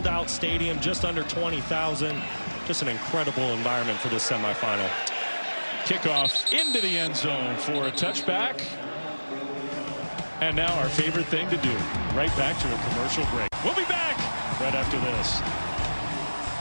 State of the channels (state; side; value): inverted; both; correlation -1.00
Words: out stadium, just under 20,000. Just an incredible environment for this semifinal. Kickoff into the end zone for a touchback. And now our favorite thing to do, right back to a commercial break. We'll be back right after this.